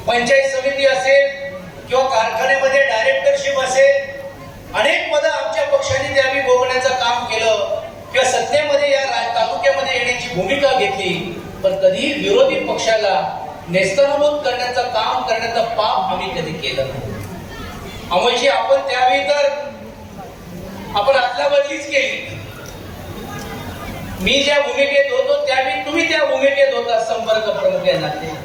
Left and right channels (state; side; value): identical; both; correlation 1.00